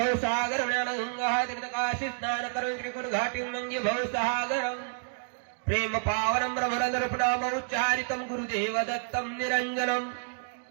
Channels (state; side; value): silent; left; digital silence